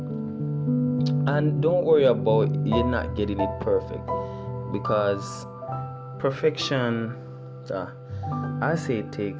and don't worry about you not getting it perfect, because perfection, I say it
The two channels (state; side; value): identical; both; correlation 1.00